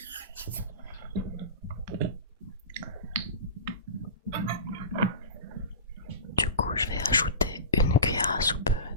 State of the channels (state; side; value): inverted; both; correlation -0.31